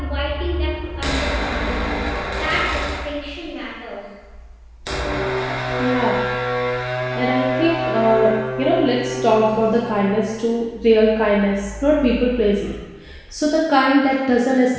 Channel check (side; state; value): both; identical; correlation 1.00